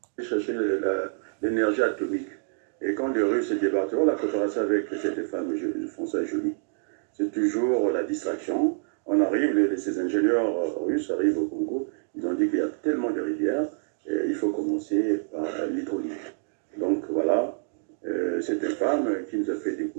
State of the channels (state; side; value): silent; left; digital silence